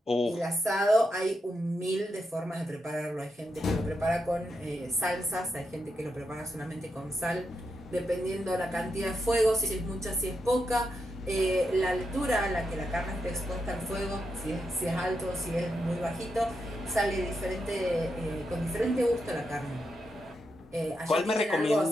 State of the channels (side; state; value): both; normal; correlation 0.84